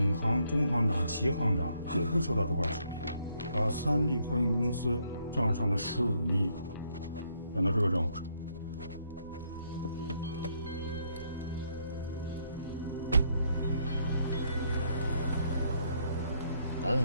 行、中行长、齐行长也会收到这块视频，把3利货运公司账上的15亿转到这个账户上。咱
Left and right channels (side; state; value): both; inverted; correlation -0.72